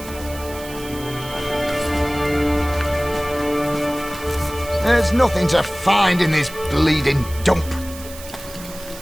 There's nothing to find in this bleeding dump.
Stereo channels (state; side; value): noise; right; hiss, 15 dB below the sound